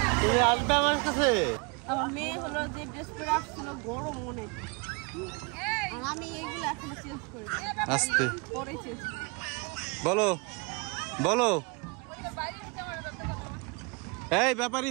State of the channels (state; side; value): quieter; left; 30.3 dB